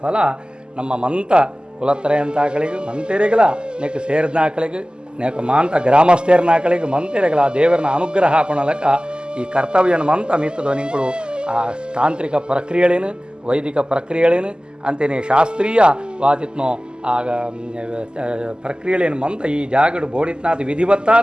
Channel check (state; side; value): late; left; 0.048 ms